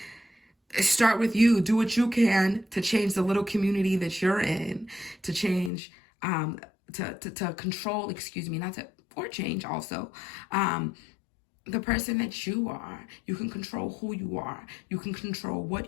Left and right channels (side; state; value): right; drops out; at 5.7 s